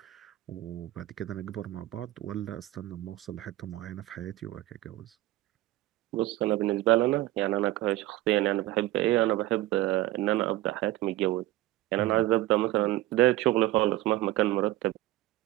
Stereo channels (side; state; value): left; quieter; 16.8 dB